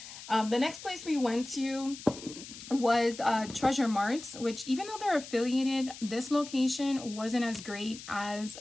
The next place we went to was Treasure Marts, which, even though they're affiliated, this location wasn't as great as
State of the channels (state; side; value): noise; left; hiss, 14 dB below the sound